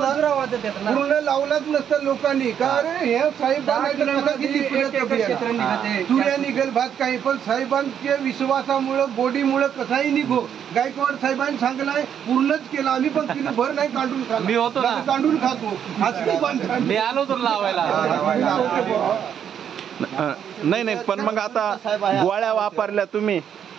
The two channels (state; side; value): quieter; left; 8.8 dB